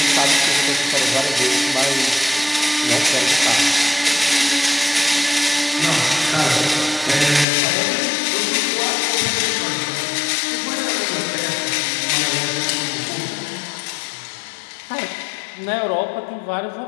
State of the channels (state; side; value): drops out; right; at 7.5 s